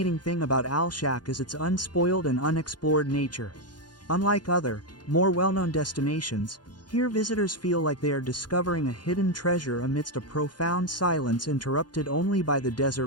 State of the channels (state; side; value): late; right; 0.70 ms